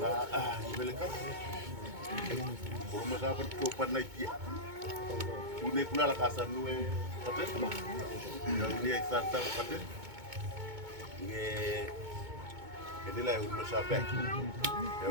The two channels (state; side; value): late; left; 2.2 ms